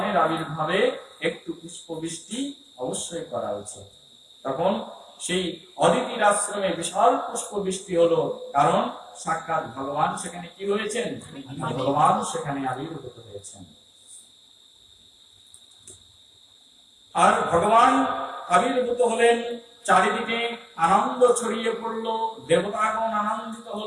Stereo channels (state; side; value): identical; both; correlation 1.00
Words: আবির্ভাবে একটু পুষ্প বৃষ্টি অবশ্যই করা উচিত। তখন সেই অদিতির আশ্রমে বিশাল পুষ্প বৃষ্টি হলো, কারণ সাক্ষাৎ ভগবান সেখানে কি হয়েছেন, ভগবান সেখানে আবির্ভূত হয়েছেন। আর ভগবান আবির্ভূত হলেন, চারিদিকে আনন্দ ছড়িয়ে পড়লো, দেবতাগণ আনন্দিত